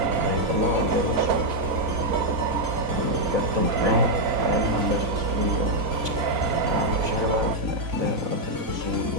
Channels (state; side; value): late; left; 4.0 ms